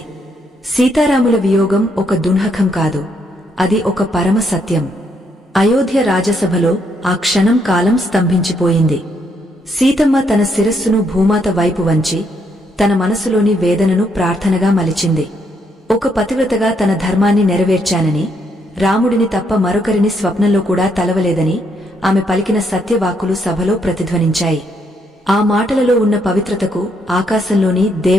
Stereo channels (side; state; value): both; normal; correlation 0.74